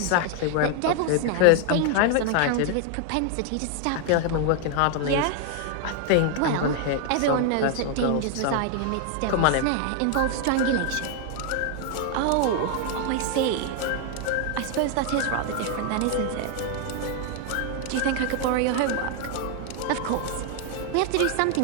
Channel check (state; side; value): different; both; correlation 0.00